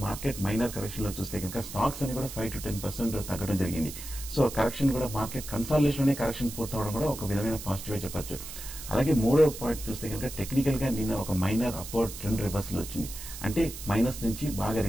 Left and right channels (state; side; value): noise; right; hiss, 11 dB below the sound